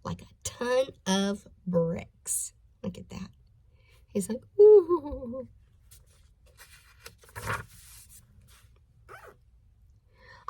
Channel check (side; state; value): both; identical; correlation 1.00